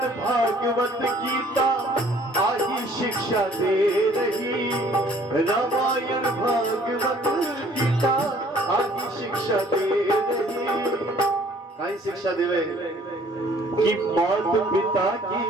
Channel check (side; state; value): both; normal; correlation 0.57